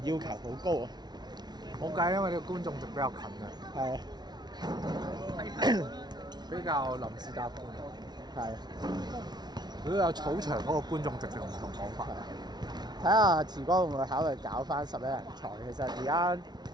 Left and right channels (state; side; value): late; left; 0.20 ms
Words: 要求好高啊！冇計，因為呢個觀眾席比較近嘅。係。比較臨時搭半。係。如果有草場嗰個觀眾席就唔同講法。睇下池哥會唔會考慮搞翻11人賽？其實而家